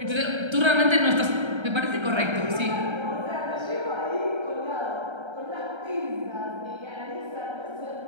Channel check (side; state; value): left; late; 1.3 ms